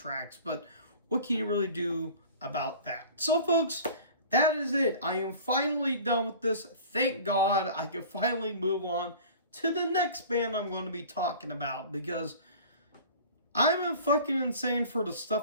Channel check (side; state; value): both; inverted; correlation -0.43